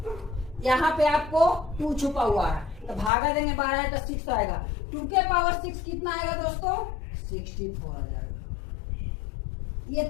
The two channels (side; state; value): right; drops out; at 3.1 s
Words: यहाँ पे आपको 2 छुपा हुआ है, तो भागा देंगे 12 है तो 6 आएगा। 2 के पावर 6 कितना आएगा दोस्तों, 64 आ जाएगा। ये